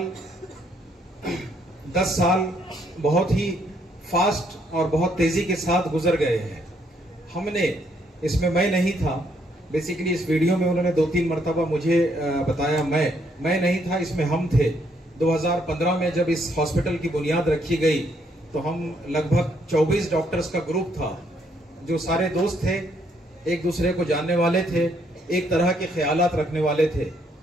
10 साल बहुत ही फास्ट और बहुत तेजी के साथ गुजर गए हैं. हमने इसमें, मैं नहीं था बेसिकली, इस वीडियो में उन्होंने 2-3 मरतबा मुझे बताया, मैं नहीं था, इसमें हम थे. 2015 में जब इस हॉस्पिटल की बुनियाद रखी गई तो हम लगभग 24 डॉक्टर्स का ग्रुप था जो सारे दोस्त थे, एक दूसरे को जानने वाले थे, एक तरह के ख्यालात रखने वाले थे.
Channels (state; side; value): normal; both; correlation 0.71